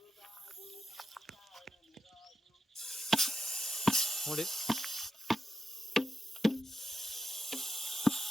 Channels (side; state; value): both; normal; correlation 0.87